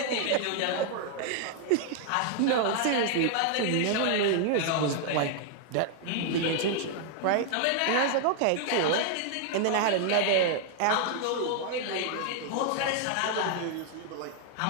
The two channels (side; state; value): both; different; correlation 0.00